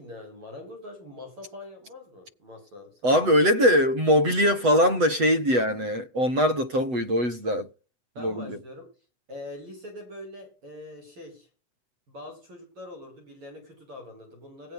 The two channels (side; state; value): left; late; 8.0 ms